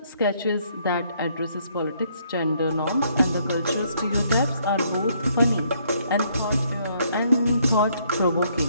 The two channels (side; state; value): both; inverted; correlation -0.68